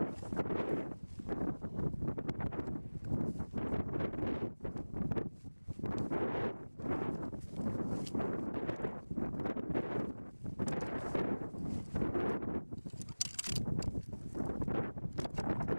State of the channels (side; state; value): both; inverted; correlation -1.00